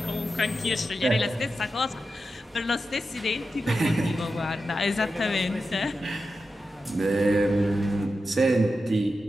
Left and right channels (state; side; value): normal; both; correlation 0.90